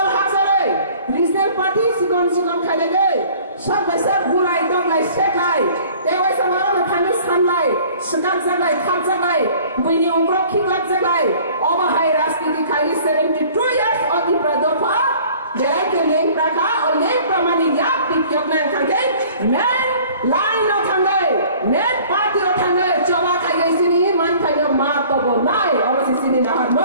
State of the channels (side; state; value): both; inverted; correlation -0.51